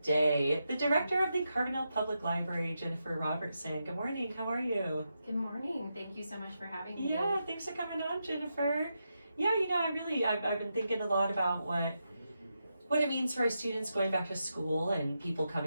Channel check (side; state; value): both; inverted; correlation -0.86